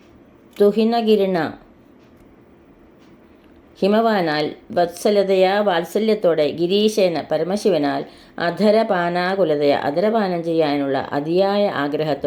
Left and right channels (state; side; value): identical; both; correlation 1.00